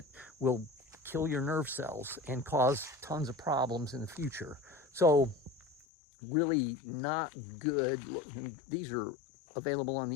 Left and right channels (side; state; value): right; drops out; at 5.9 s